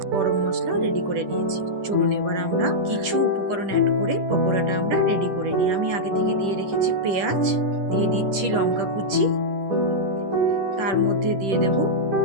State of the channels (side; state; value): left; late; 10 ms